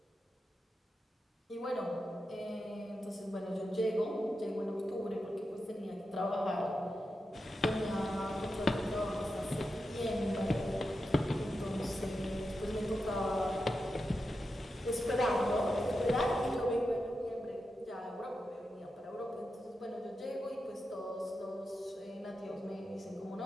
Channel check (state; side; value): normal; both; correlation 0.89